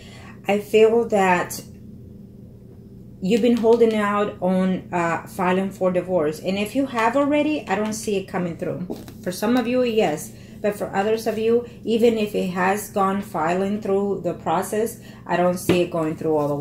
I feel that you've been holding out on filing for divorce. And if you have already, I don't see it coming through. For some of you, yes. But for others of you, even if it has gone filing through the process, I don't see it going through all the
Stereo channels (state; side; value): identical; both; correlation 1.00